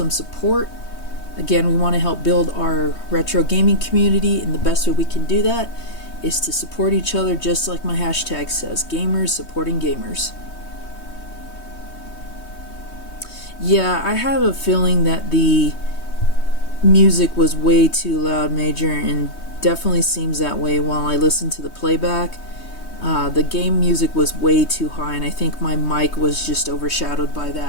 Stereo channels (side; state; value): right; late; 3.2 ms